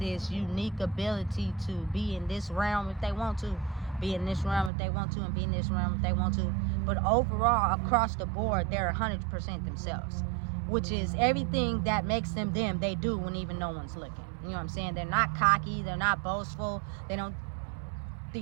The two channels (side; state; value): left; drops out; at 4.7 s